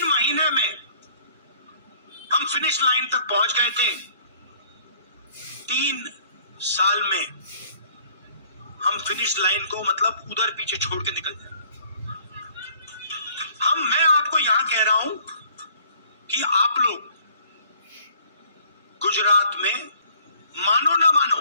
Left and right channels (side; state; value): both; inverted; correlation -0.56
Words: महीने में हम फिनिश लाइन तक पहुंच गए थे। 3 साल में हम फिनिश लाइन को मतलब उधर पीछे छोड़ के निकल जाए। मैं आपको यहां कह रहा हूं कि आप लोग गुजरात में मानो ना मानो,